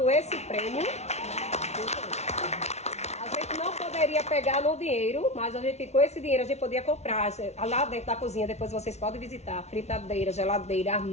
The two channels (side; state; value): right; late; 0.32 ms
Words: esse prêmio. Não poderia pegar no dinheiro, mas a gente, com esse dinheiro a gente podia comprar lá dentro da cozinha. Depois vocês podem visitar fritadeira, geladeira,